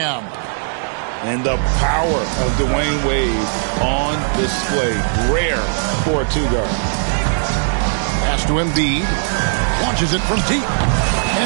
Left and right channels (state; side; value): silent; left; digital silence